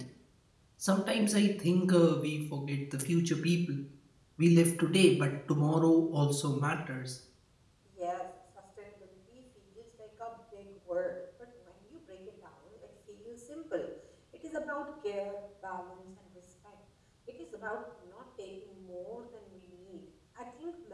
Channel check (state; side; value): identical; both; correlation 1.00